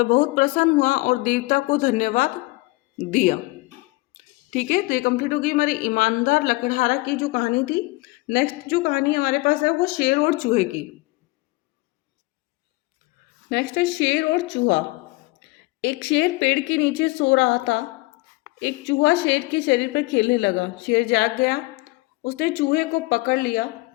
बहुत प्रसन्न हुआ और देवता को धन्यवाद दिया। ठीक है, तो ये कंप्लीट होगी हमारी ईमानदार लकड़हारा की जो कहानी थी। नेक्स्ट जो कहानी हमारे पास है वो शेर और चूहे की। नेक्स्ट है शेर और चूहा। एक शेर पेड़ के नीचे सो रहा था। एक चूहा शेर के शरीर पर खेलने लगा। शेर जाग गया। उसने चूहे को पकड़ लिया।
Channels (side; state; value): right; quieter; 23.0 dB